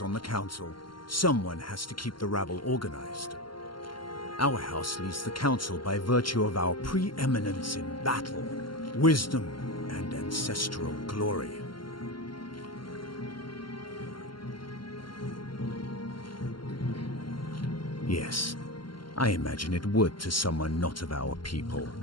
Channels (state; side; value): late; right; 0.72 ms